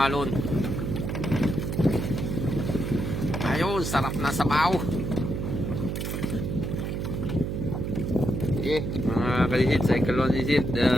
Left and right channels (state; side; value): noise; right; hum, 2 dB below the sound